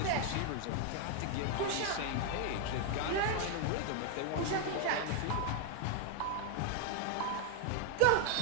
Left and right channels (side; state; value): both; different; correlation 0.01